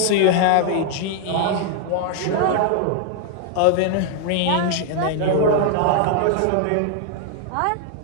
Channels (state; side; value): different; both; correlation 0.00